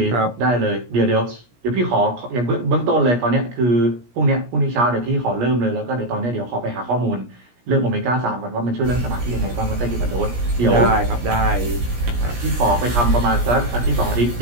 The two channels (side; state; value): left; late; 17 ms